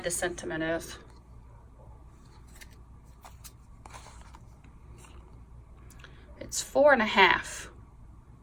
the sentiment is. It's 4 1/2.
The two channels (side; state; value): both; identical; correlation 1.00